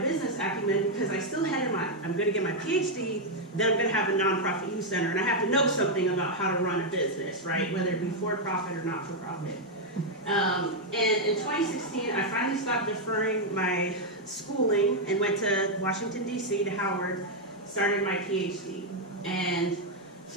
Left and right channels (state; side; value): normal; both; correlation 0.00